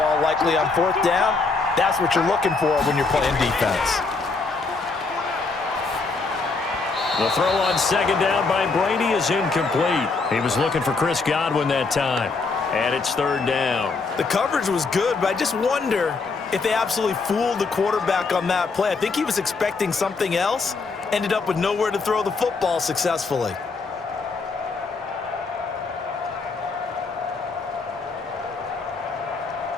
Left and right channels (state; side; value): quieter; right; 4.2 dB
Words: likely on 4th down. That's what you're looking for when you're playing defense. The throw on second down by Brady is incomplete. He was looking for Chris Godwin that time. And it's third down. The coverage was good, but I just wonder if they absolutely fooled the quarterback on that play. I think he was expecting something else. Ended up with nowhere to throw the football successfully.